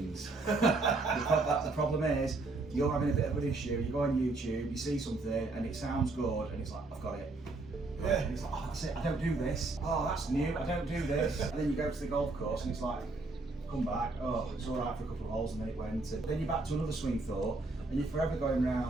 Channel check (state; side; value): quieter; left; 3.3 dB